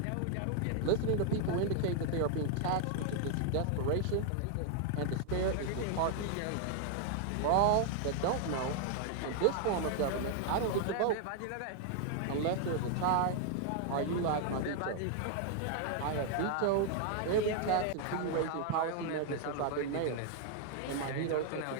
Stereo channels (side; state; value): both; different; correlation 0.00